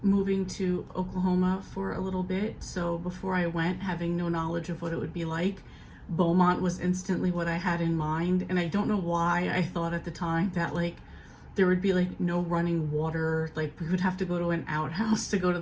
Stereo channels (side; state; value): both; identical; correlation 1.00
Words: moving to Oklahoma for a little bit. So before I went, having no knowledge of what it would be like, Beaumont was instantly what I had in mind. And I don't know why I thought at the time that like there would be like no running water, like we would have to go to an outhouse to go to